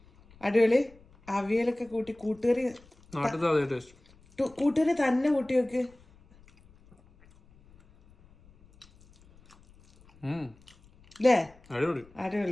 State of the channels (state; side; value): noise; left; rumble, 28 dB below the sound